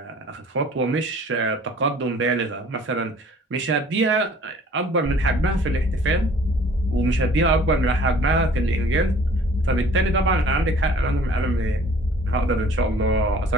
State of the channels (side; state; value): both; normal; correlation 0.52